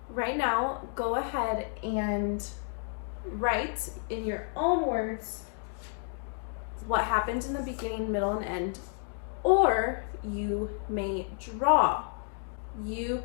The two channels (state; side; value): silent; right; 57 dB below the other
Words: right now, go ahead and write in your own words what happened in the beginning, middle, and end, or you may draw. You